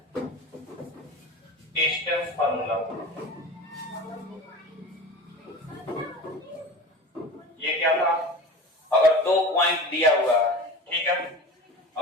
डिस्टेंस फॉर्मूला। ये क्या था? अगर दो पॉइंट दिया हुआ है, ठीक है,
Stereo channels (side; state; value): both; normal; correlation 0.34